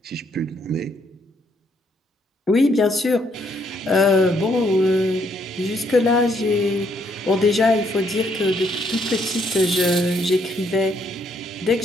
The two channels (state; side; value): normal; both; correlation 0.71